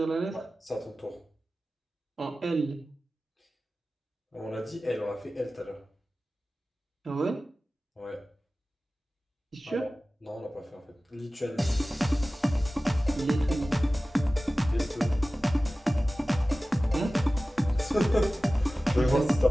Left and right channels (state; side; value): normal; both; correlation 0.96